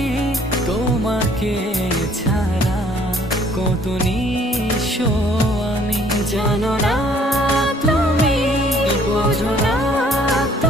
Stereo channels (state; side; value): normal; both; correlation 0.59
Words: তোমাকে ছাড়া কত নিঃস্ব আমি। জানো না তুমি, বোঝো না